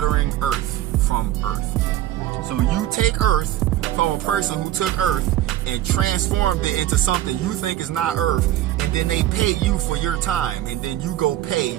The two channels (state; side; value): quieter; left; 13.5 dB